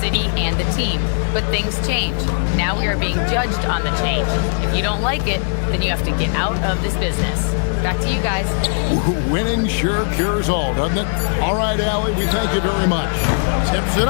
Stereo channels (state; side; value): silent; right; digital silence